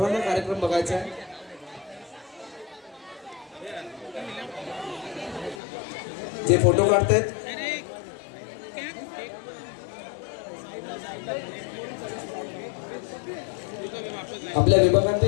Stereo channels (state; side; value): drops out; right; at 5.6 s